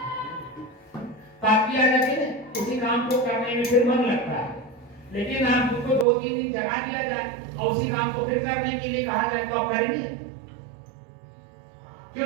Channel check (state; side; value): drops out; left; at 6.1 s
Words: ताकि आ जाती है, उसी काम को करने में फिर मन लगता है। लेकिन आप उसको 2-3 दिन जगा दिया जाए और उसी काम को फिर करने के लिए कहा जाए तो आप करेंगे? क्यों